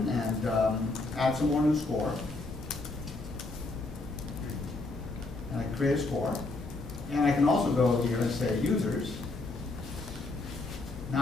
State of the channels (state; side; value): quieter; right; 3.2 dB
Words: and add some more new score. And I create a score. And I can also go here and say users. Now